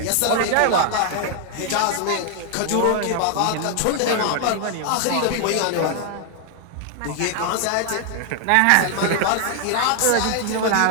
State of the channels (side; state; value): both; different; correlation 0.00